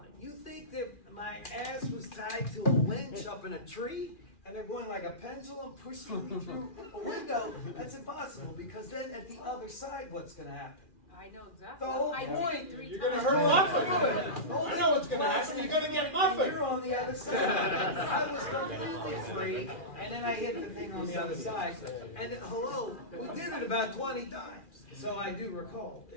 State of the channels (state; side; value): late; right; 2.4 ms